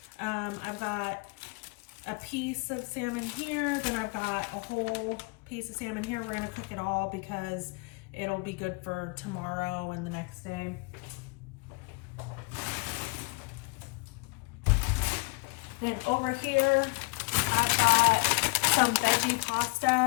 I've got a piece of salmon here, then I've got a whole piece of salmon here. We're gonna cook it all because it'll be good for tomorrow and the next day. Then over here, I've got some veggie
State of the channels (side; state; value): right; quieter; 30.0 dB